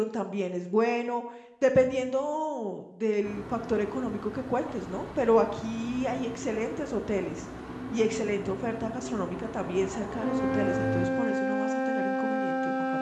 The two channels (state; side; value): identical; both; correlation 1.00